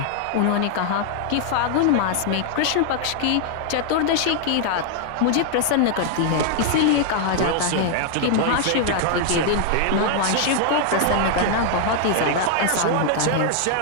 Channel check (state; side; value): different; both; correlation 0.00